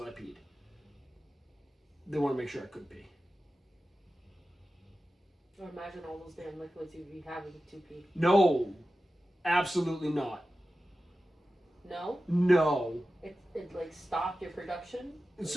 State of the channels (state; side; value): normal; both; correlation 0.94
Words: I peed. They want to make sure I could pee. Or imagine all those damn liquids you'd be having to pee. No. Absolutely not. No? No. It like stopped your production?